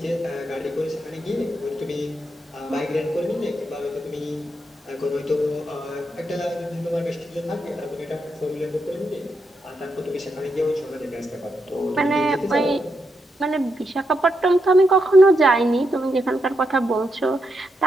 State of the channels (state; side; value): normal; both; correlation 0.82